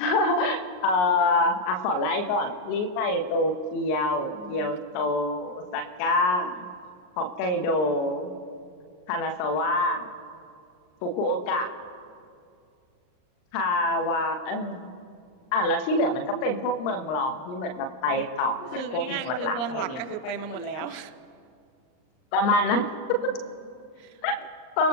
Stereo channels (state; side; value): late; right; 38 ms